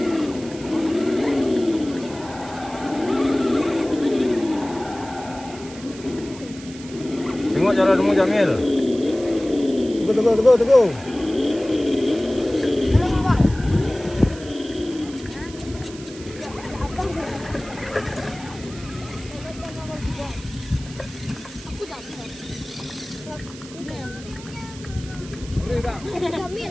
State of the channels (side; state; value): right; noise; hiss, 17 dB below the sound